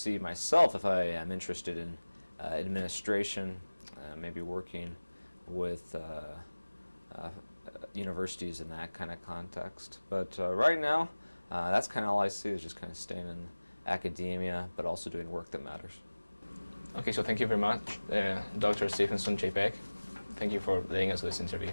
myself if I am interested in administration, maybe working with universities in that kind of context. But right now, that's kind of all I see is just kind of staying in academia, but also doing work that matters. Okay, so thank you very much, Dr. Stephenson, J. Beck. Thank you for letting us do this interview.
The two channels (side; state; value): both; inverted; correlation -1.00